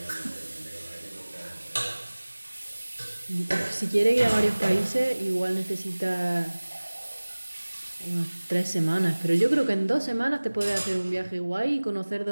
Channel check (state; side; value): inverted; both; correlation -1.00